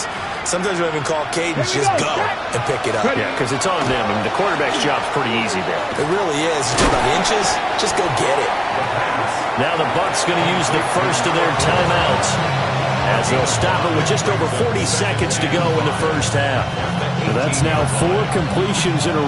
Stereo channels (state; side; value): identical; both; correlation 1.00